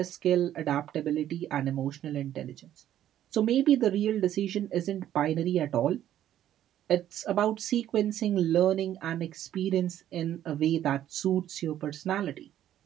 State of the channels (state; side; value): quieter; left; 11.7 dB